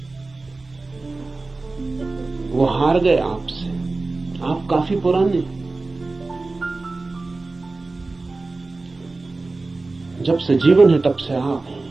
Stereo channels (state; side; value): quieter; left; 3.4 dB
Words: वो हार गए आपसे। आप काफी पुराने, जब से जीवन है तब से आप हैं।